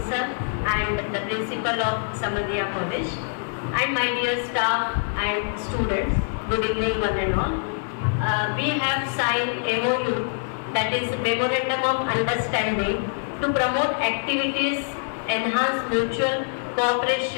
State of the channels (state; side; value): silent; right; digital silence